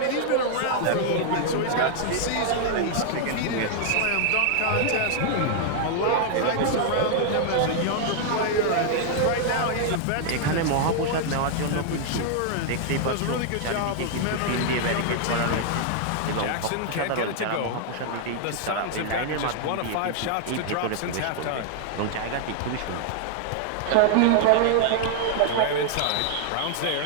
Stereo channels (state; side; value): different; both; correlation -0.01